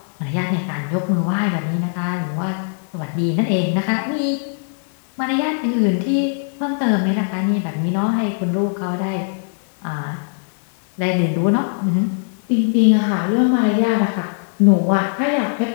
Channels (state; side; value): silent; right; 62 dB below the other